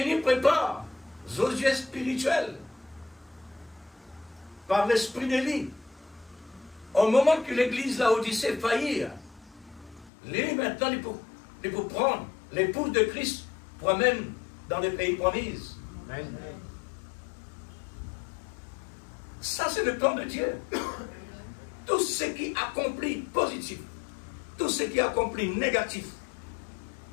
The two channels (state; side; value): drops out; right; at 10.1 s